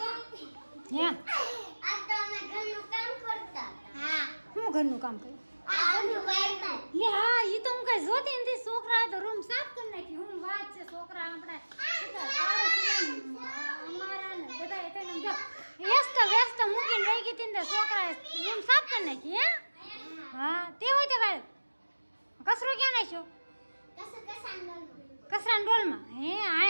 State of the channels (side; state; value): both; inverted; correlation -1.00